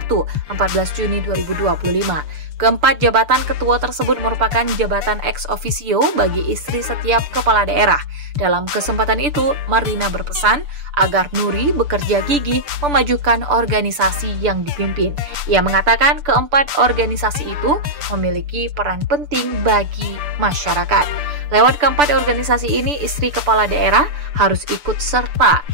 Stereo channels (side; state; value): left; late; 6.9 ms